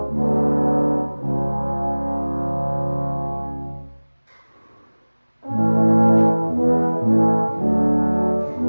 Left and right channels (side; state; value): both; inverted; correlation -1.00